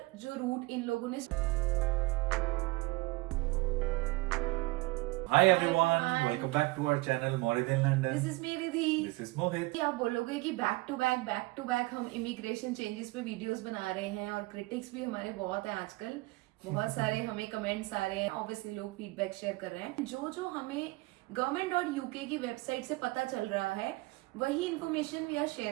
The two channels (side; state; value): left; quieter; 22.6 dB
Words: जो रूट इन लोगों ने। Hi everyone, welcome back to our channel Morid in London. This is me Ridhi. This is Mohit. आप बोलोगे कि बैक टू बैक हम इमिग्रेशन चेंजेस पे वीडियोस बना रहे हैं और क्रिटिक्स भी हमारे बहुत हैं आजकल। बहुत सारे हमें कमेंट्स आ रहे हैं, ऑब्वियसली लोग फीडबैक शेयर कर रहे हैं। जो हमें गवर्नमेंट और यूके की वेबसाइट से पता चल रहा है वही information we are